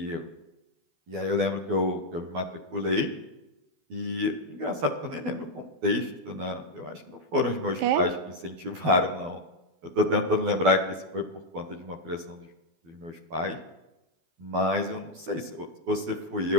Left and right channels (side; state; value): left; late; 12 ms